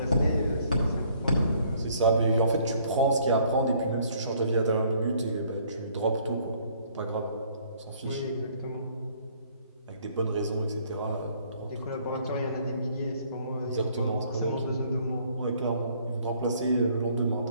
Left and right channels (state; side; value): inverted; both; correlation -0.62